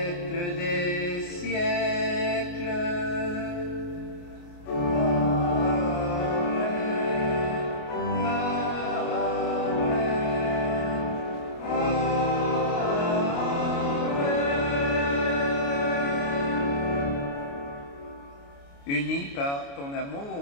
des siècles. Unis par ton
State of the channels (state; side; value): late; right; 29 ms